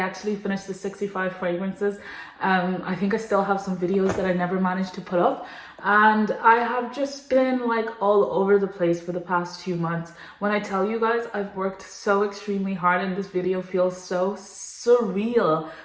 finished the 65 fragrances. I think I still have some videos that I never managed to put up. And I have just been like all over the place for the past 2 months. When I tell you guys, I've worked so extremely hard and this video feels so surreal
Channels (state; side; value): identical; both; correlation 1.00